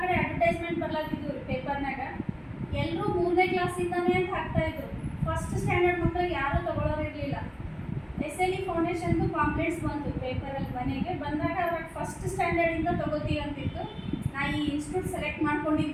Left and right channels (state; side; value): identical; both; correlation 1.00